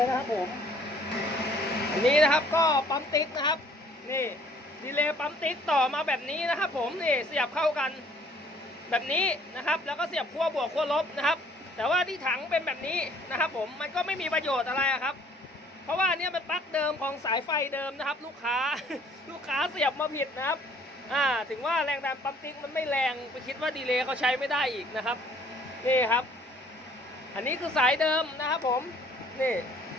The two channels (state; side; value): normal; both; correlation 0.58